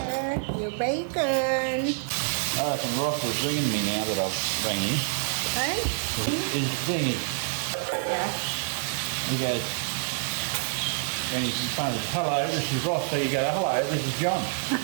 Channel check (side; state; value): left; silent; digital silence